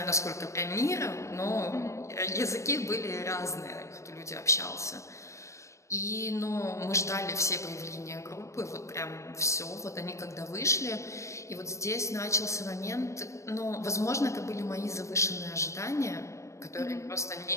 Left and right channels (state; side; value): late; right; 0.15 ms